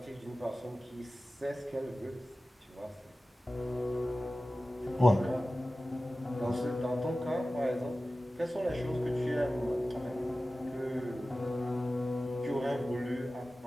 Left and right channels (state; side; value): normal; both; correlation 0.96